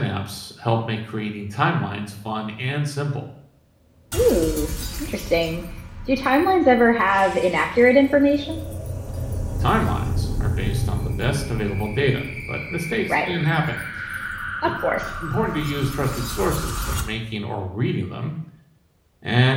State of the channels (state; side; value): identical; both; correlation 1.00